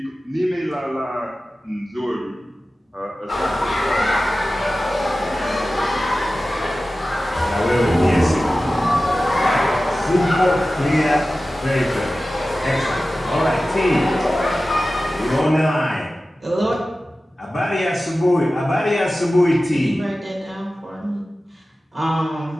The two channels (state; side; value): normal; both; correlation 0.95